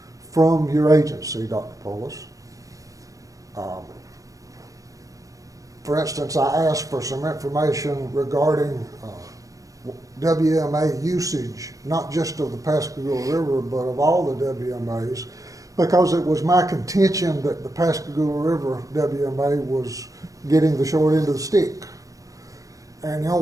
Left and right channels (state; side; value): late; left; 0.16 ms